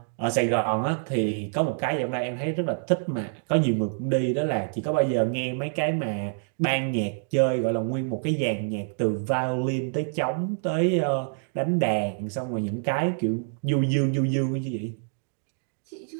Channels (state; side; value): silent; left; digital silence